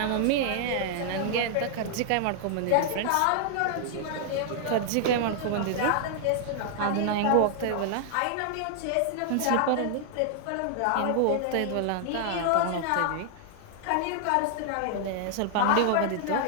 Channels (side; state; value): both; different; correlation -0.01